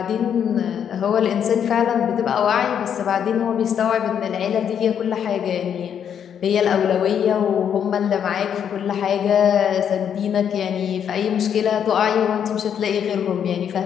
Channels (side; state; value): right; quieter; 8.5 dB